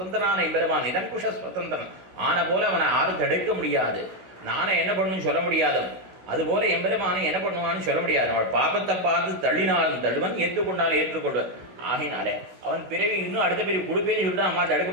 எம்பெருமான் நிரங்குஷ சுதந்திரன் ஆன போல அவனை யாரும் தடுக்க முடியாது. நானே என்ன பண்ணணும்னு சொல்ல முடியாது. அதுபோல எம்பெருமானை என்ன பண்ணுவான்னு சொல்ல முடியாது. அவள் பாப்பத்தை பார்த்து தள்ளினாலும் தள்ளுவன், ஏற்றுக்கொண்டாலும் ஏற்றுக்கொள்வன். ஆகினாலே அவன் பிறவி இன்னும் அடுத்த பிறவி கொடுப்பேன்னு சொல்லிட்டு அம்மா தடுக்க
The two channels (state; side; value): late; left; 16 ms